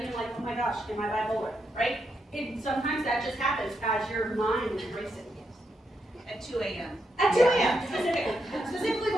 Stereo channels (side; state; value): both; normal; correlation 0.81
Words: and I'm like, oh my gosh, am I bipolar, right? Sometimes that just happens as your mind is racing. At 2 a.m. At 2 a.m. specifically